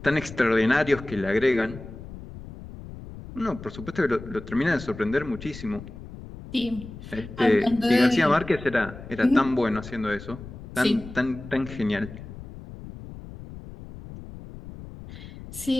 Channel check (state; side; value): noise; left; rumble, 14 dB below the sound